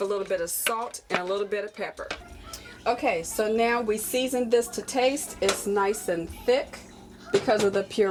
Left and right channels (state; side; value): identical; both; correlation 1.00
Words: a little bit of salt and a little bit of pepper. Okay, so now we seasoned this to taste. It's nice and thick because of the